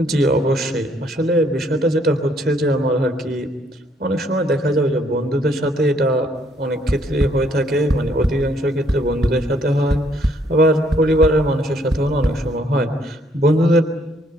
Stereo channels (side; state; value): both; normal; correlation 0.67